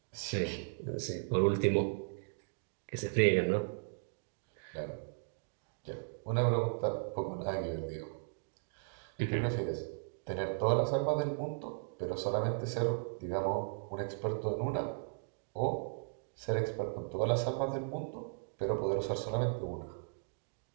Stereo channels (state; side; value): silent; left; digital silence